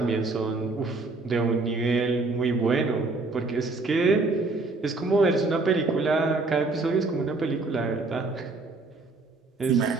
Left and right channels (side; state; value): left; quieter; 3.5 dB